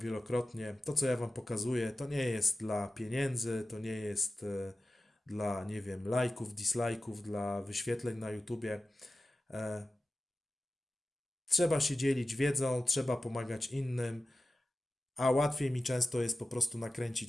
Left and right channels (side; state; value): both; normal; correlation 0.94